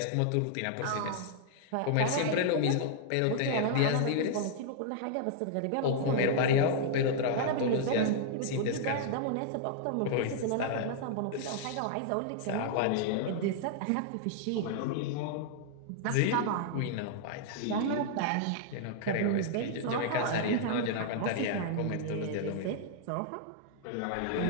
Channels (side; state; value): both; different; correlation -0.01